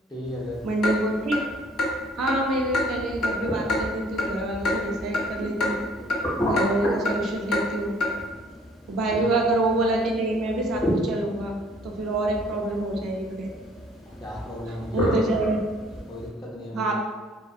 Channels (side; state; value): both; normal; correlation 0.58